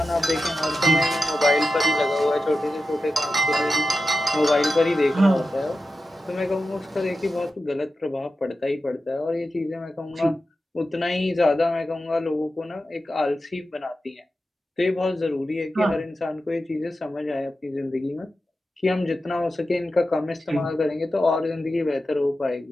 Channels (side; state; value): both; normal; correlation 0.92